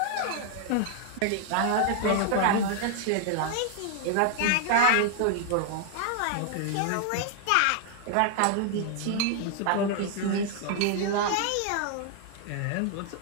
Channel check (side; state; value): both; different; correlation 0.00